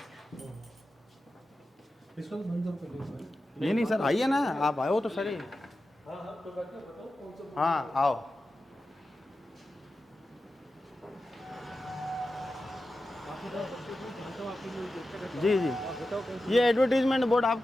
इसको तो बंद कर लीजिए। नहीं नहीं सर, आइए ना, आप आए हो तो सर। हाँ हाँ, तो बात बताओ कौन सा। हाँ आओ। जी जी, ये एडवर्टीजमेंट बोर्ड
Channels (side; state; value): both; normal; correlation 0.92